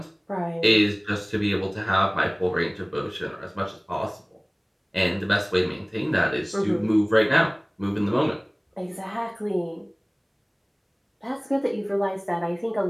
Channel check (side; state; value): both; identical; correlation 1.00